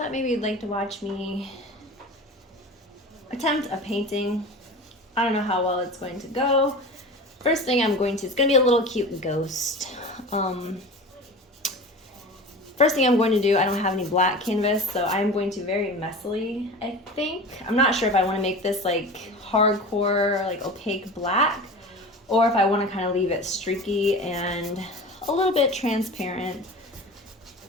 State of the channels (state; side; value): normal; both; correlation 0.34